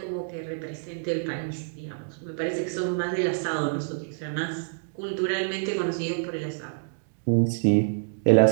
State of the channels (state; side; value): silent; left; digital silence